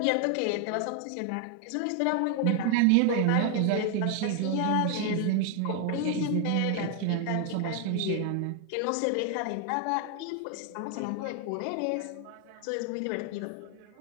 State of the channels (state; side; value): different; both; correlation 0.00